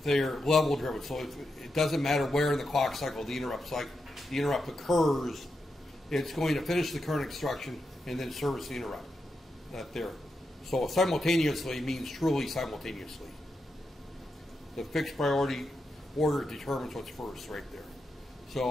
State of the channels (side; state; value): both; normal; correlation 0.86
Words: level driven. So it doesn't matter where in the clock cycle the interrupt occurs. It's going to finish the current instruction and then service the interrupt. So simultaneously means truly simultaneously. The fixed priority order determines what's first right there.